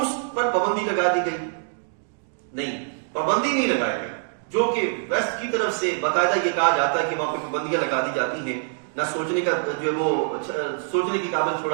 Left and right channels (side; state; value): left; silent; digital silence